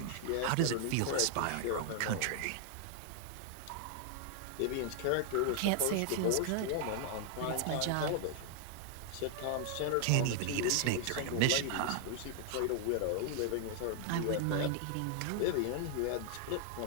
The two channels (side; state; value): both; different; correlation 0.00